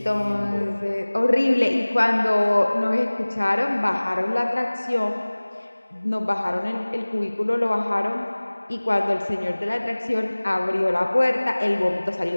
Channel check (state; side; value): inverted; both; correlation -1.00